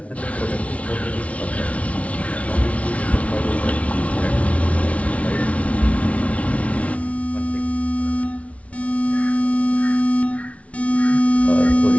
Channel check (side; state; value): right; late; 0.065 ms